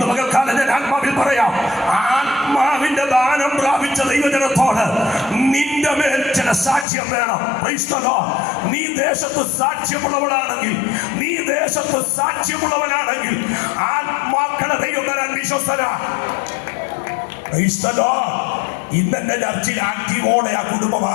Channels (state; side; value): drops out; right; at 6.9 s